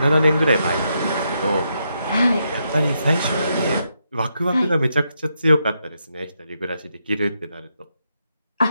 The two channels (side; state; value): both; inverted; correlation -0.81